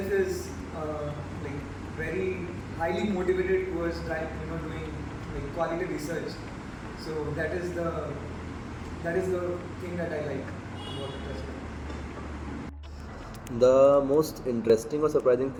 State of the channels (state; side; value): identical; both; correlation 1.00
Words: is like very highly motivated towards doing like quality research. So that is the thing that I like about the Trust Lab. The most interesting or surprising